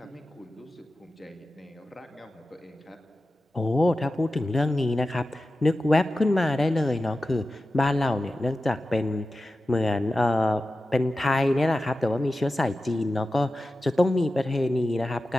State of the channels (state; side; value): normal; both; correlation 0.93